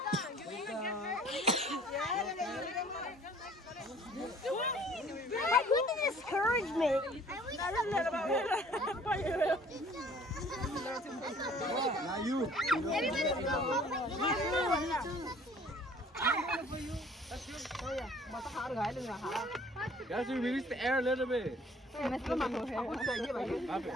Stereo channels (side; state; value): both; normal; correlation 0.53